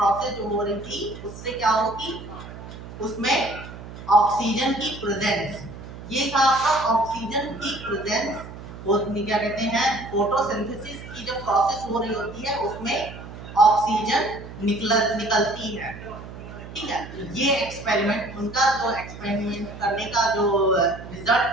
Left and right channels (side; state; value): right; noise; hum, 13 dB below the sound